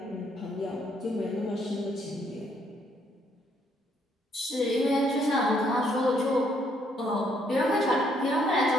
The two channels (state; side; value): normal; both; correlation 0.70